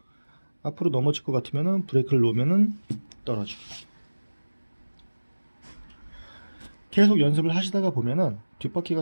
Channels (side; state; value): both; inverted; correlation -1.00